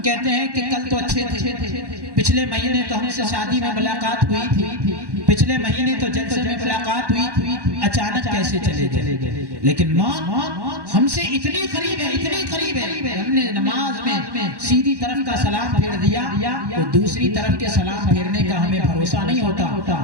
کہتے ہیں کہ کل تو اچھے تھے، پچھلے مہینے تو ہم سے شادی میں ملاقات ہوئی تھی، پچھلے مہینے تو جلسے میں ملاقات ہوئی تھی، اچانک کیسے چلے گئے؟ لیکن موت ہم سے اتنی قریب ہے، اتنی قریب ہے، ہم نے نماز میں سیدھی طرف کا سلام پھیر دیا تو دوسری طرف کے سلام پھیرنے کا ہمیں بھروسہ نہیں ہوتا،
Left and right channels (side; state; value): left; late; 1.1 ms